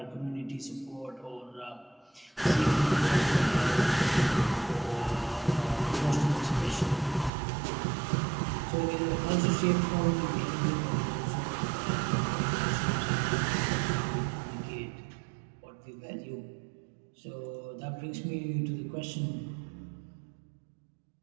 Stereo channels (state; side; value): drops out; left; at 7.3 s